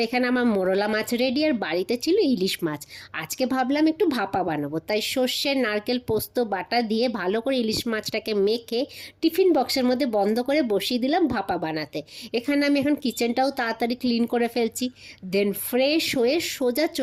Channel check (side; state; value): both; identical; correlation 1.00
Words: এখানে আমার মোরলা মাছ রেডি, আর বাড়িতে ছিল ইলিশ মাছ। আজকে ভাবলাম একটু ভাপা বানাবো, তাই সর্ষে নারকেল পোস্ত বাটা দিয়ে ভালো করে ইলিশ মাছটাকে মেখে টিফিন বক্সের মধ্যে বন্ধ করে বসিয়ে দিলাম ভাপা বানাতে। এখানে আমি এখন কিচেনটাও তাড়াতাড়ি ক্লিন করে ফেলছি। দেন ফ্রেশ হয়ে সোজা